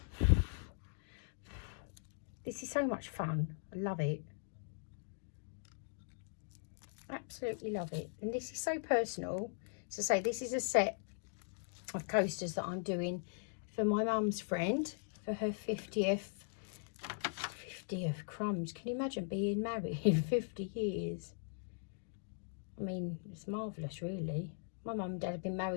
This is so much fun. I love it. Absolutely love it. And this is so personal. So say this is a set of coasters that I'm doing for my mum's friend for her 50th crumbs. Can you imagine being married in 50 years? I mean, it's marvellous, really. My mum and dad have been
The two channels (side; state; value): right; silent; digital silence